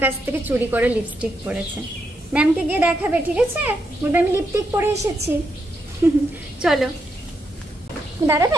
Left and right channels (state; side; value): normal; both; correlation 0.81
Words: কাছ থেকে চুরি করে লিপস্টিক পড়েছে। ম্যামকে গিয়ে দেখাবে, ঠিক আছে? বলবে আমি লিপস্টিক পরে এসেছি। চলো